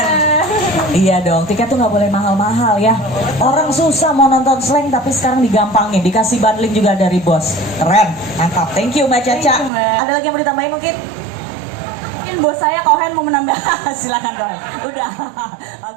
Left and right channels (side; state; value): left; drops out; at 9.7 s